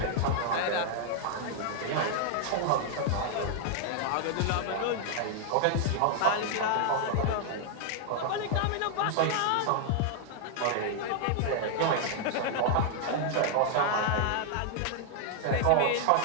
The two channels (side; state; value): both; different; correlation 0.00